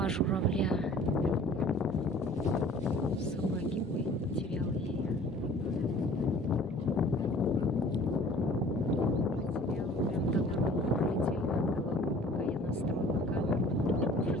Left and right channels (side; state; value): both; normal; correlation 0.50